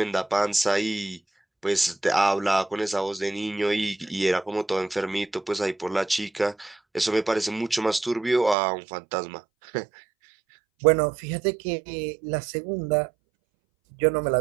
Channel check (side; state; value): left; drops out; at 8.6 s